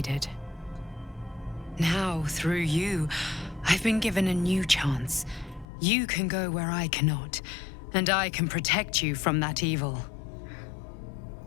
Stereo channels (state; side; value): drops out; right; at 5.7 s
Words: Now, through you, I've been given a new chance. You can go where I cannot, and I can protect you from that evil.